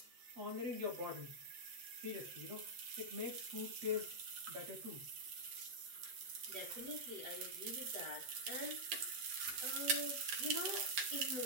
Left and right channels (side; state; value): left; late; 7.9 ms